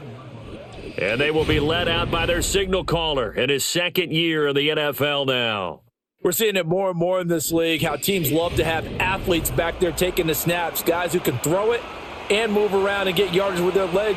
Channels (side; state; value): both; identical; correlation 1.00